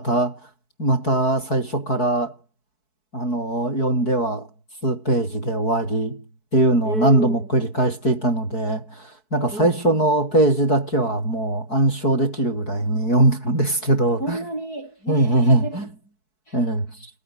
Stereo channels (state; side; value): late; right; 4.6 ms